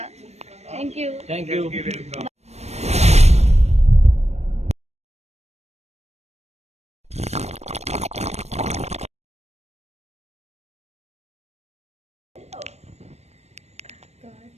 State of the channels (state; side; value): late; left; 0.31 ms